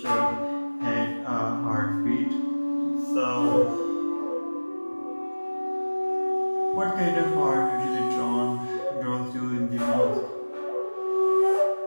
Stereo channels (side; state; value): both; inverted; correlation -1.00